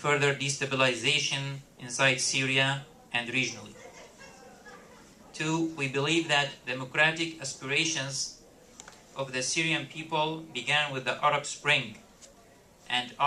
destabilization inside Syria and regionally. Two, we believe that democratic aspirations of the Syrian people began with the Arab Spring and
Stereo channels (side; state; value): both; identical; correlation 1.00